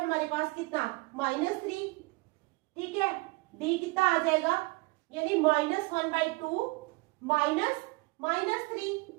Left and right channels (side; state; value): left; quieter; 25.1 dB